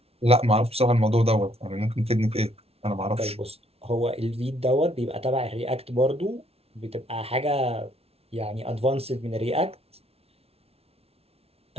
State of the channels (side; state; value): left; late; 0.30 ms